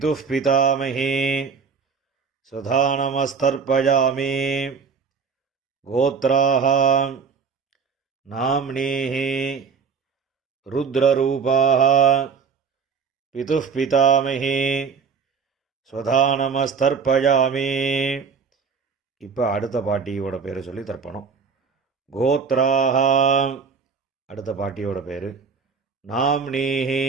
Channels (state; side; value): quieter; left; 5.8 dB